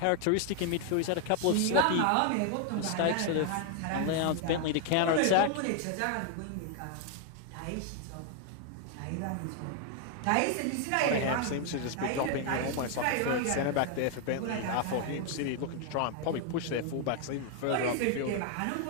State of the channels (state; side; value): different; both; correlation 0.00